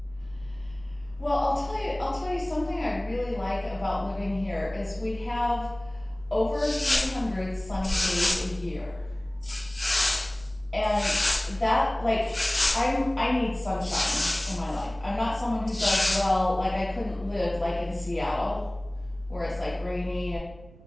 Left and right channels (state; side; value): noise; right; rumble, 21 dB below the sound